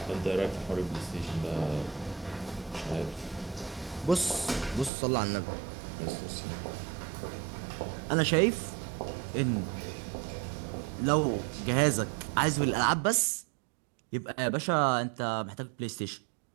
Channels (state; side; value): drops out; left; at 4.9 s